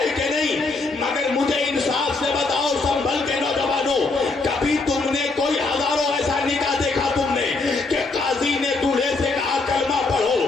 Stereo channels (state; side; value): quieter; right; 3.7 dB